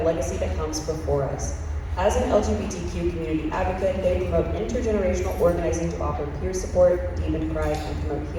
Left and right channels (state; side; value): identical; both; correlation 1.00